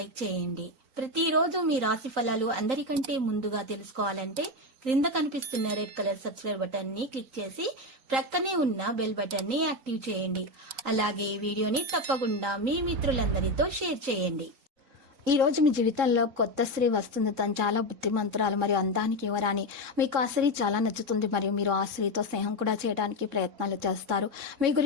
చేయండి. ప్రతిరోజు మీ రాశి ఫలాలు అందరికంటే ముందుగా తెలుసుకోవాలంటే క్రింద కనిపిస్తున్న రెడ్ కలర్ సబ్స్క్రైబ్ బటన్ ని క్లిక్ చేసి ప్రక్కనే ఉన్న బెల్ బటన్ ని యాక్టివ్ చేయండి. అలాగే ఈ వీడియోని తప్పకుండా మీ మిత్రులందరితో షేర్ చేయండి. ఈ రోజు మీ జీవితంలో కొత్త స్త్రీ వస్తుంది. తను చాలా బుద్ధిమంతురాలు మరియు అందానికి యువరాని. మీకు ఆ స్త్రీ చాలా నచ్చుతుంది మరియు మీరు ఆ స్త్రీతో స్నేహం కూడా చేయడానికి ప్రయత్నాలు చేస్తారు. మీ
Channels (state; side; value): late; left; 3.8 ms